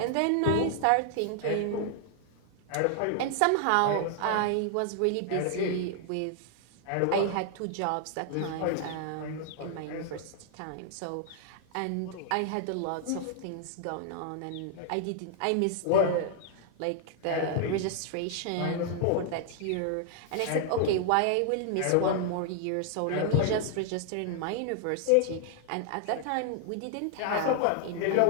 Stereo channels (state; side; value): different; both; correlation 0.00